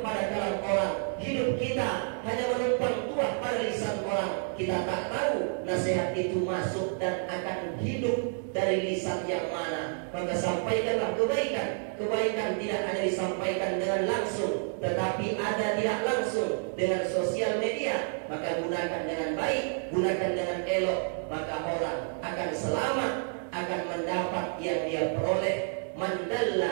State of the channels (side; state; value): left; silent; 58 dB below the other